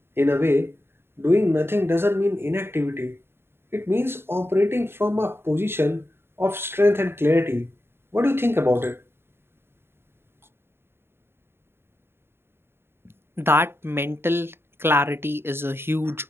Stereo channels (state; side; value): late; left; 0.11 ms